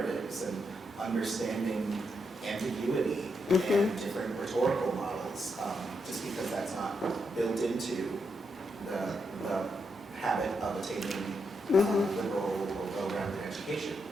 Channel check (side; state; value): both; normal; correlation 0.82